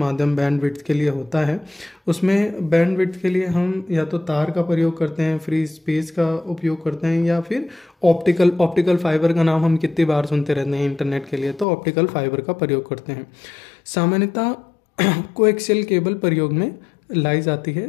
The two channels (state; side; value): drops out; right; at 11.7 s